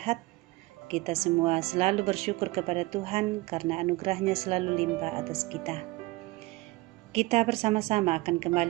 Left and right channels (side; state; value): left; quieter; 21.8 dB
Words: Kita semua selalu bersyukur kepada Tuhan karena anugerahnya selalu limpah atas kita. Kita bersama-sama akan